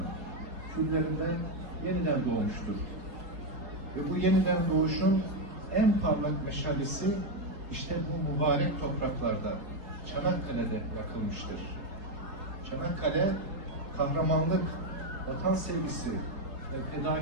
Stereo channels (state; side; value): late; left; 4.1 ms